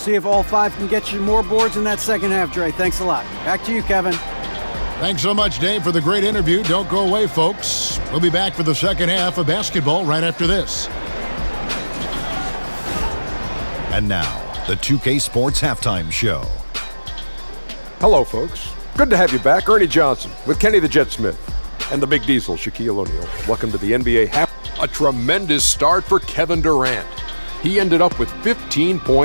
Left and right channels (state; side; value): inverted; both; correlation -1.00